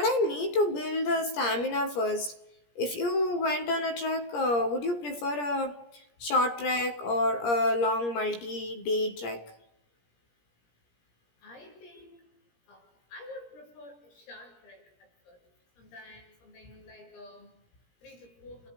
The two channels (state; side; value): late; right; 17 ms